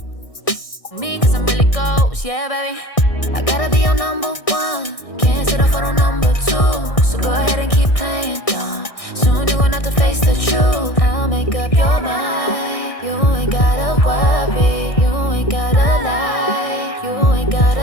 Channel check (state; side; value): late; right; 1.6 ms